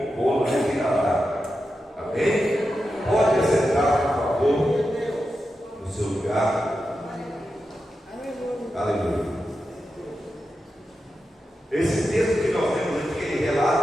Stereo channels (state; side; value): normal; both; correlation 0.89